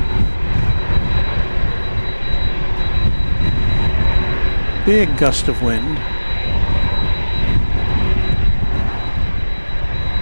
Big gust of wind.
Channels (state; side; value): inverted; both; correlation -1.00